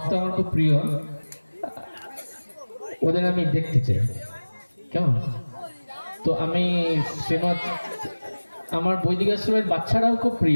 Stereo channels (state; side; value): inverted; both; correlation -1.00